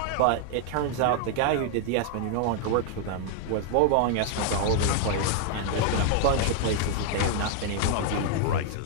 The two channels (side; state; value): both; different; correlation 0.00